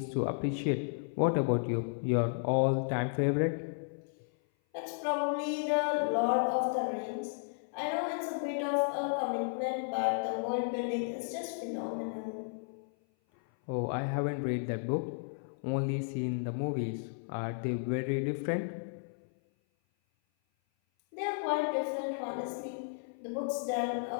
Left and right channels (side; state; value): right; silent; 55 dB below the other